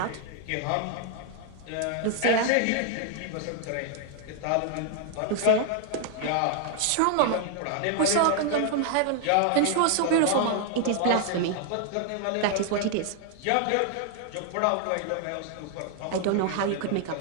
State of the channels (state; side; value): different; both; correlation 0.00